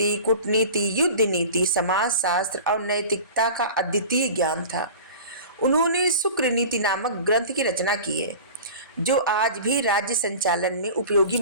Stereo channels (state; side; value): inverted; both; correlation -0.38